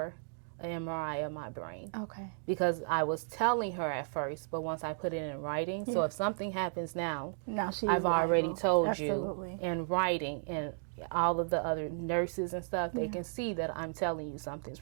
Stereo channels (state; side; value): silent; left; digital silence